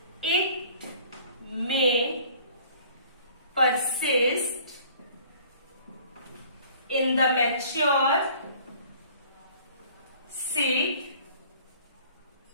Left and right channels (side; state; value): both; inverted; correlation -0.52